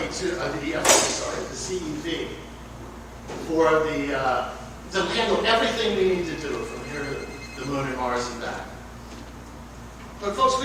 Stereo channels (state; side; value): identical; both; correlation 1.00